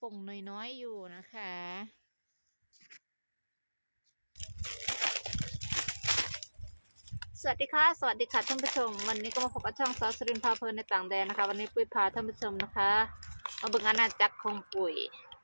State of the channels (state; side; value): inverted; both; correlation -1.00